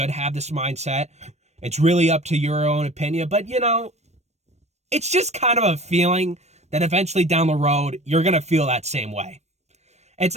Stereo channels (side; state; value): left; late; 0.32 ms